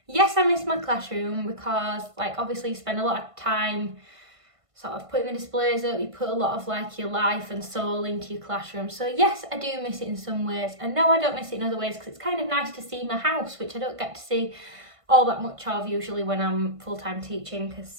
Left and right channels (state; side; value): late; left; 1.5 ms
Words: Yes, I miss my classroom because like obviously you spend a lot of time sort of putting the displays up, you put a lot of like your life and soul into your classroom. So yes, I do miss it in some ways, and no, I don't miss it in other ways because it's kind of nice to see my house, which I don't get to see all that much of usually when I'm full-time teaching